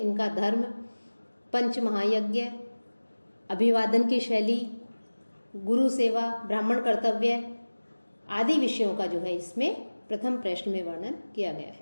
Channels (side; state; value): both; inverted; correlation -1.00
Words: धर्म, पंच महायज्ञ, अभिवादन की शैली, गुरु सेवा, ब्राह्मण कर्तव्य आदि विषयों का जो है इसमें प्रथम प्रश्न में वर्णन किया गया